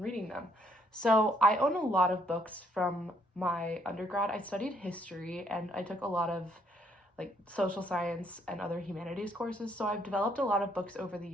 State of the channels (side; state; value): both; normal; correlation 0.69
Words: reading them. So I own a lot of books from my undergrad. I studied history and I took a lot of social science and other humanities courses. So I've developed a lot of books over the